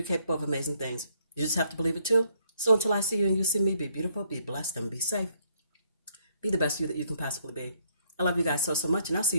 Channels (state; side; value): inverted; both; correlation -0.69